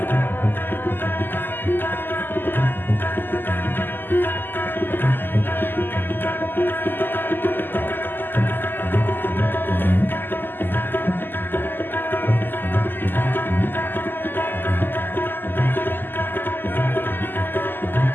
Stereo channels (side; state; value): right; late; 0.092 ms